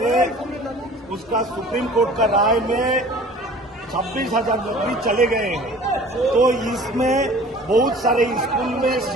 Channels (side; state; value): both; normal; correlation 0.46